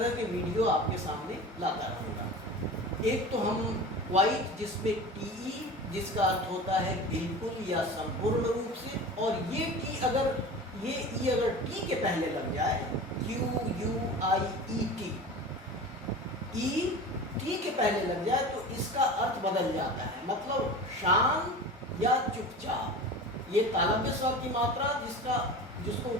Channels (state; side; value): normal; both; correlation 0.34